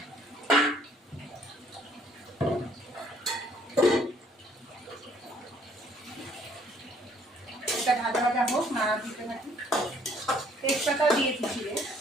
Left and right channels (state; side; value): normal; both; correlation 0.62